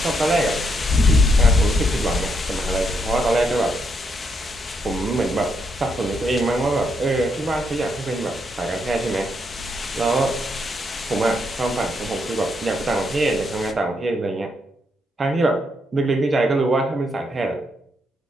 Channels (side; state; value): both; normal; correlation 0.77